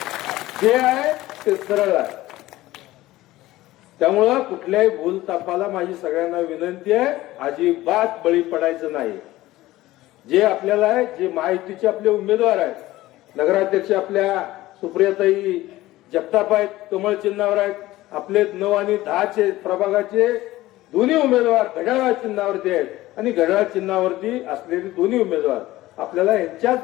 जे आहे ते सरळ आहे. त्यामुळं कुठल्याही भूलतापाला माझी सगळ्यांना विनंती आहे, अजिबात बळी पडायचं नाही. जे आपल्याला आहे, जे महायुतीचे आपले उमेदवार आहेत, नगराध्यक्ष आपल्या सुप्रियाताई जगताप आहेत, कमळ चिन्हावर आहेत. आपले 9 आणि 10 प्रभागाचे दोन्ही उमेदवार घड्याळ चिन्हावरती आहेत आणि घड्याळ चिन्हावरती असलेले दोन्ही उमेदवार आपल्याला यांच्याच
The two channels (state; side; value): quieter; right; 17.0 dB